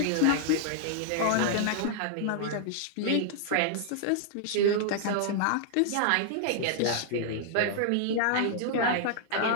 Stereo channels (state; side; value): different; both; correlation -0.01